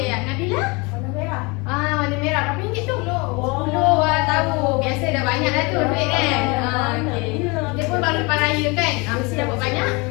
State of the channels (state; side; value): quieter; right; 27.9 dB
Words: Nabila? Warna merah. Warna merah. Berapa ringgit tu? 10. Tahu. Biasa dah banyak dah tu duit kan? Okey. Kita pun baru lepas raya kan? Mesti dapat banyak